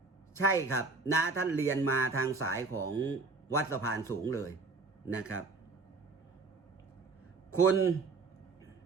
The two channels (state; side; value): quieter; left; 4.0 dB